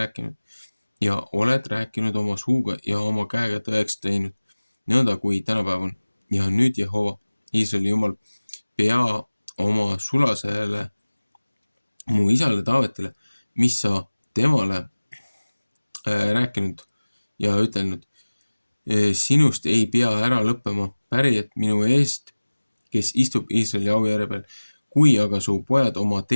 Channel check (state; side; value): inverted; both; correlation -1.00